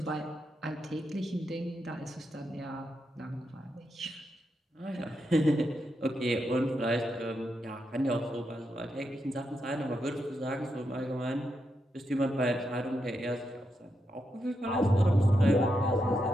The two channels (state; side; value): normal; both; correlation 0.84